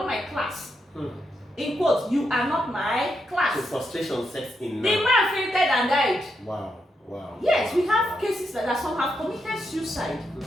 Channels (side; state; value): both; normal; correlation 0.82